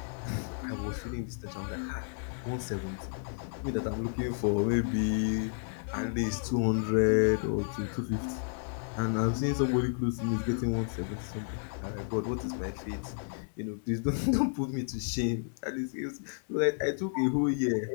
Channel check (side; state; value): right; silent; 57 dB below the other